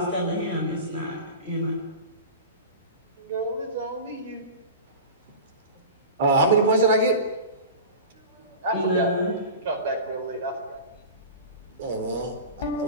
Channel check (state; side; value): inverted; both; correlation -0.33